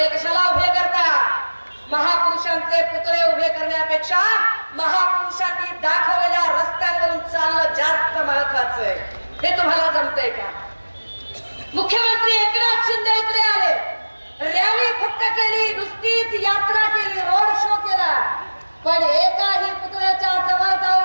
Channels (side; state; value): both; inverted; correlation -1.00